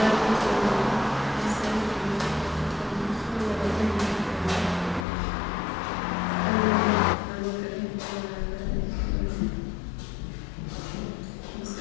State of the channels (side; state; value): right; drops out; at 5.1 s